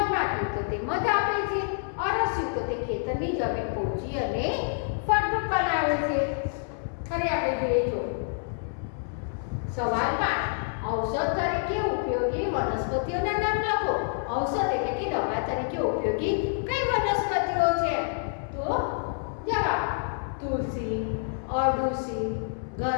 તો તે મધ આપે છે. અળસિયું તો તે ખેતરની જમીન પોચી અને ફળદ્રુપ બનાવે છે. હવે આપણે જોઈએ જો સવાલ 5, ઔષધ તરીકે ઉપયોગી વનસ્પતિઓના નામ લખો. ઔષધ એટલે કે દવા તરીકે ઉપયોગી કઈ વનસ્પતિઓ છે? તો જવાબ તુલસી, અરડુસી,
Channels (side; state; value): right; silent; 60 dB below the other